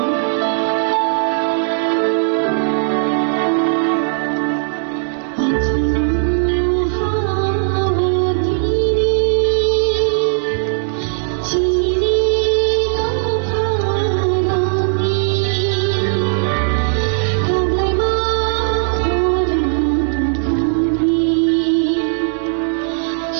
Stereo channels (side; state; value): left; silent; digital silence